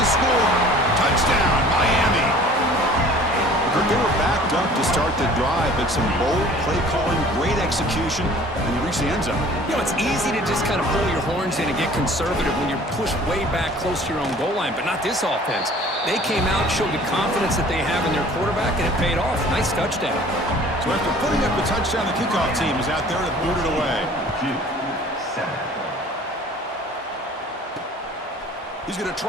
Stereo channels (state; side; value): normal; both; correlation 0.49